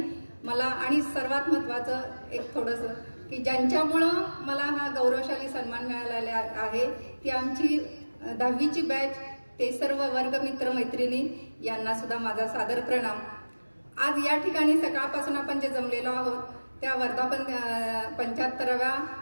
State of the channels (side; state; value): both; inverted; correlation -1.00